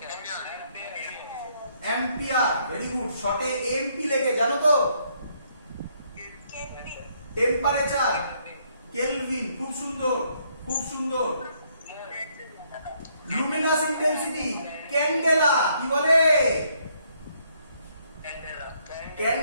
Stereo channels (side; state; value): both; inverted; correlation -0.70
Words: অ্যাম্পিয়ার, ভেরি গুড, শর্টে এমপি লেখে, জানো তো? টেম্পারেচার, কেলভিন, খুব সুন্দর, খুব সুন্দর। লুমিনাস ইন্টেন্সিটি, ক্যান্ডেলা, কি বলে?